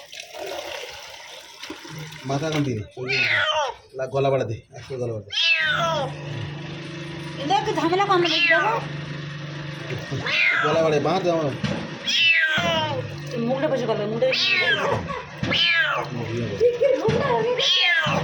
মাথা কান দিন গলা বাড়া দে একটু গলা বাড়া দে ঝামেলা কম গলা বাড়ে বাঁধ আমার মুখটা বসে গেল মুখটা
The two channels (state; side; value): identical; both; correlation 1.00